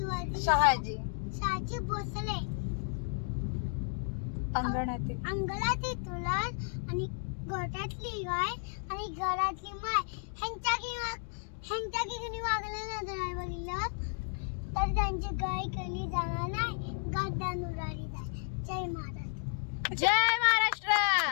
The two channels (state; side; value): silent; right; 55 dB below the other